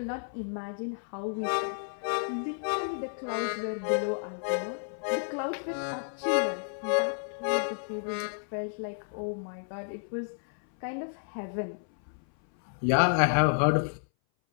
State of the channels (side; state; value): right; silent; 57 dB below the other